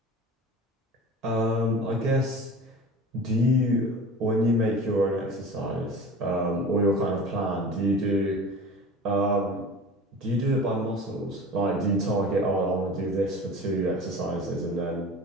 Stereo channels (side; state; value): both; normal; correlation 0.38